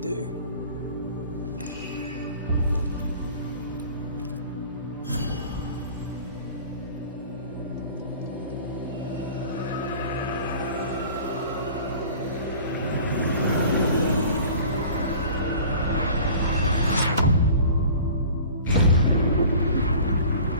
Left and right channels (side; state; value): both; inverted; correlation -0.44